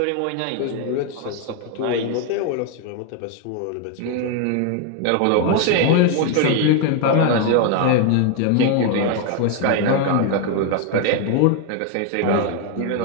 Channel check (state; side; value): different; both; correlation 0.01